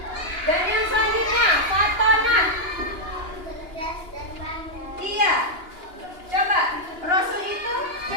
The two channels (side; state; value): left; late; 2.9 ms